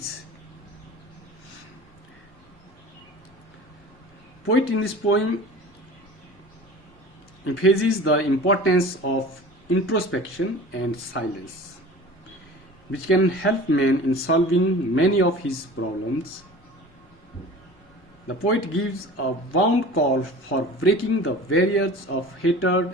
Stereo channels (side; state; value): both; normal; correlation 0.39